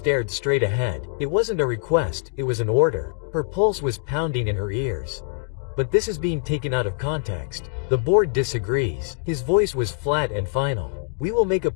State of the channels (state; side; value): quieter; right; 30.0 dB